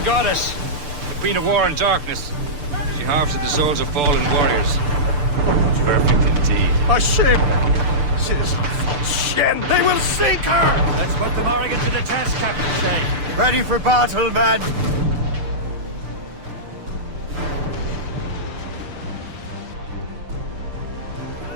goddess, the queen of war and darkness. She harvests the souls of fallen warriors. Perfect indeed. A ship! Citizen von Shen, they will... Ready for battle, men!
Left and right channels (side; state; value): left; late; 6.9 ms